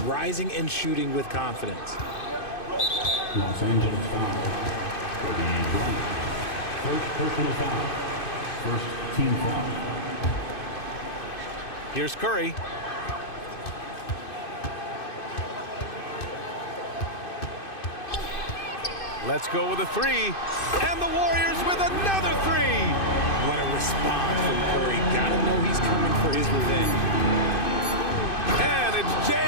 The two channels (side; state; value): right; late; 2.6 ms